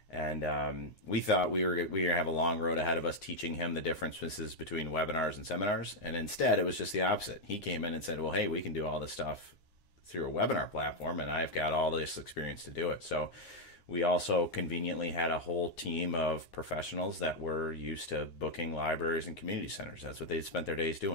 And we thought we were going to have a long road ahead of us teaching him the differences between webinars and seminars. And instead, it was just the opposite. He came in and said, well, hey, we can do all this stuff through a webinar platform, and I've got all this experience to do it. So we also conveniently had a whole team of professionals that were used to booking libraries and community centers. That's what they spent their days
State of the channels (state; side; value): late; right; 9.7 ms